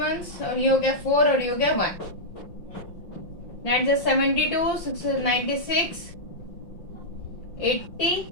और ये हो गया 4, और ये हो गया 1। 72, 96, 80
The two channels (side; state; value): right; late; 5.7 ms